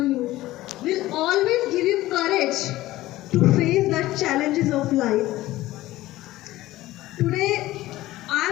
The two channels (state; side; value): quieter; right; 16.5 dB